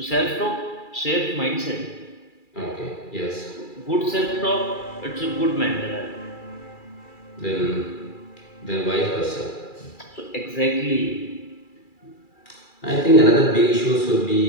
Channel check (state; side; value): late; right; 2.3 ms